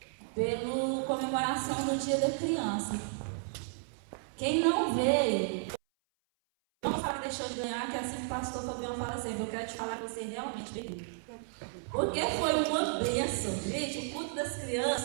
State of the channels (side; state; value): left; silent; 56 dB below the other